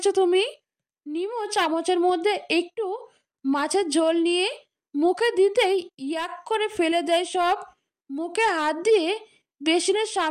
তুমি। নিমো চামচের মধ্যে একটু মাছের ঝোল নিয়ে মুখে দিতেই ইয়াক করে ফেলে দেয় সব। মুখে হাত দিয়ে বেসিনের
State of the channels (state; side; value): identical; both; correlation 1.00